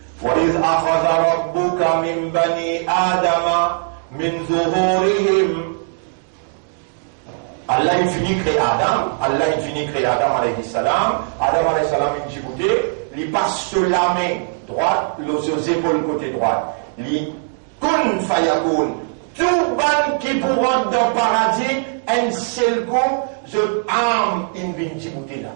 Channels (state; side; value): silent; left; 66 dB below the other